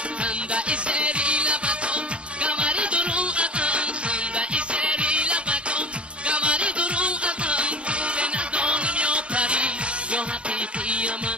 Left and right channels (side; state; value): left; late; 0.059 ms